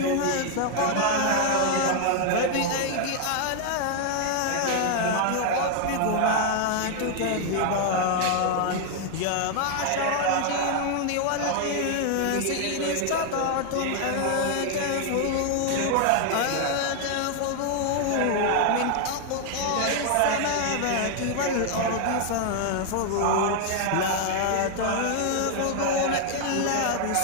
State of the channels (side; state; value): both; different; correlation 0.00